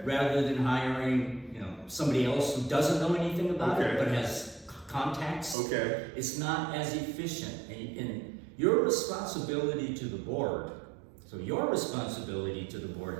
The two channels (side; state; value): left; drops out; at 5.6 s